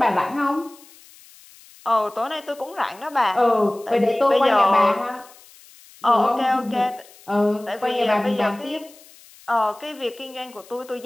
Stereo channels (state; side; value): noise; left; hiss, 24 dB below the sound